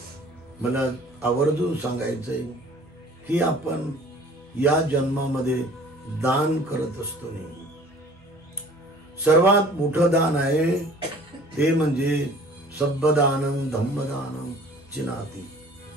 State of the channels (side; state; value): both; normal; correlation 0.49